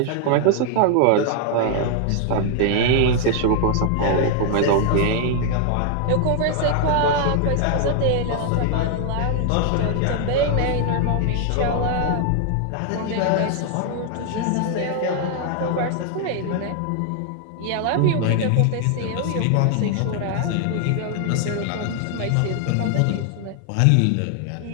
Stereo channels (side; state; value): both; different; correlation 0.00